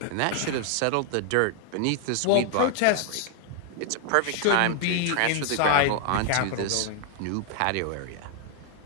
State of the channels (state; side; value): different; both; correlation 0.00